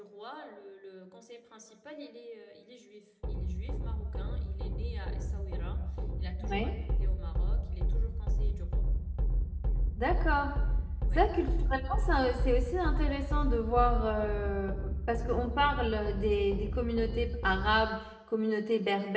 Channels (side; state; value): both; identical; correlation 1.00